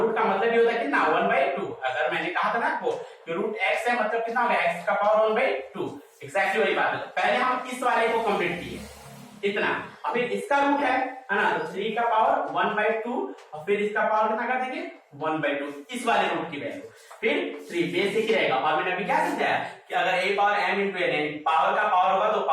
का मतलब ये होता है कितना 1/2। अगर मैंने कहा था ना आपको कि रूट x है मतलब कितना हो गया x का पावर 1/2, एक्जैक्टली वही बात है। पहले हम इस वाले को कंप्लीट किए इतना, अब फिर इसका रूट है ना, तो 3 का पावर 1/2 और फिर इसका पावर कितना कर देंगे 1/2, इस वाले रूट की वैल्यू फिर 3 बेसिक ही रहेगा। और मैंने अभी क्या समझाया कि अगर a power m into n power का पावर होगा तो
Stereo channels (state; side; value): identical; both; correlation 1.00